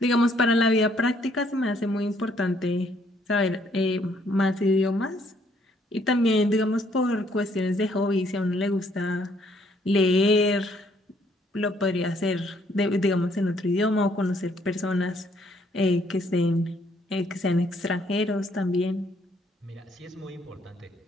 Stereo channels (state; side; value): normal; both; correlation 0.67